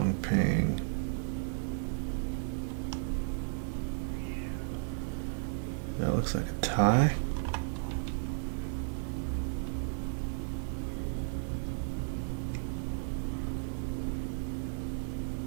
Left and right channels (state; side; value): silent; left; digital silence